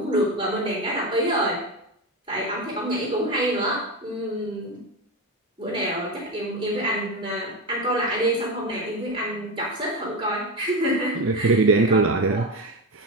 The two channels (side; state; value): both; normal; correlation 0.17